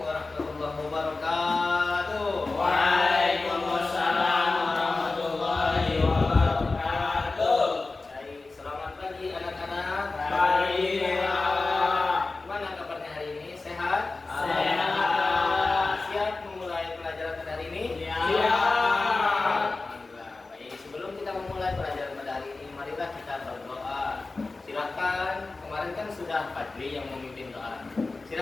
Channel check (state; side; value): quieter; right; 3.6 dB